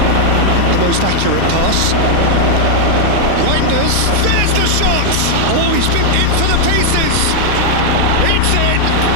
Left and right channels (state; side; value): different; both; correlation 0.00